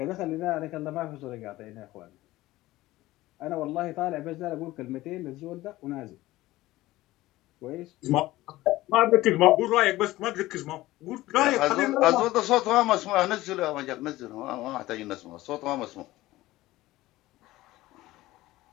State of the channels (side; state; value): right; quieter; 17.4 dB